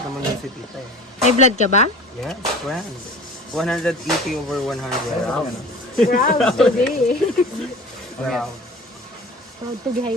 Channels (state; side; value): normal; both; correlation 0.40